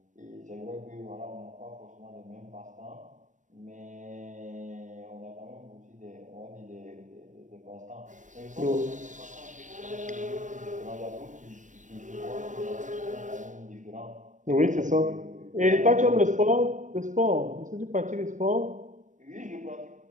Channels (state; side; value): late; left; 0.37 ms